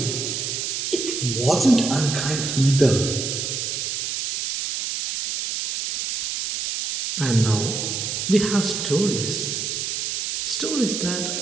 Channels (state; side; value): noise; right; hiss, 2 dB below the sound